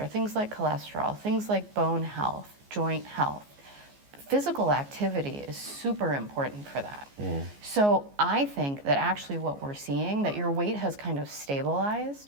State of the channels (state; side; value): late; left; 14 ms